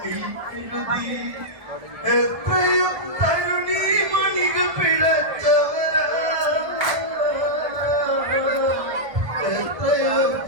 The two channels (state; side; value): late; left; 1.3 ms